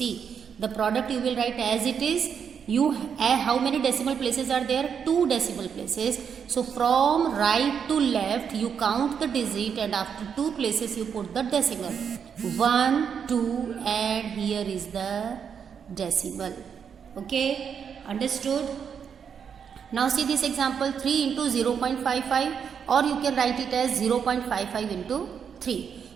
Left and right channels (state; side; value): quieter; left; 7.2 dB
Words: the product you will write as it is. You how many decimal places are there? 2 decimal places. So from right to left you count the digit, and after 2 places you put the decimal. 1, 2 and here is the decimal. Okay, understood? Now see this example, 3 into 0.55, or you can write it as 0.55 into 3.